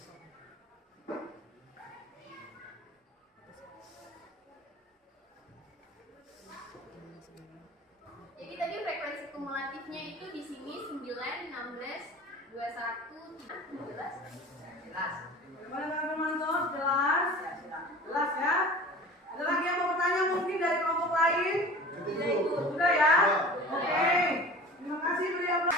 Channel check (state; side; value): normal; both; correlation 0.39